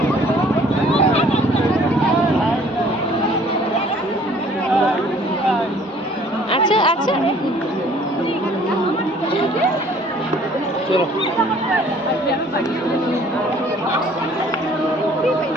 আচ্ছা আচ্ছা, চলো।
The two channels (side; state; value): both; normal; correlation 0.55